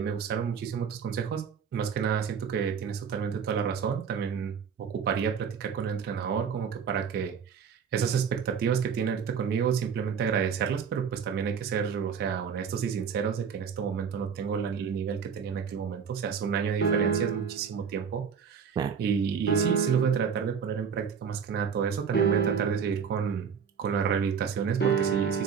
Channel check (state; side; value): quieter; left; 6.8 dB